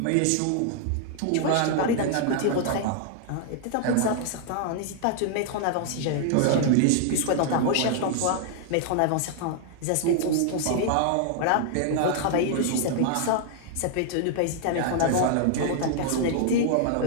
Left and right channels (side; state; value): both; different; correlation 0.00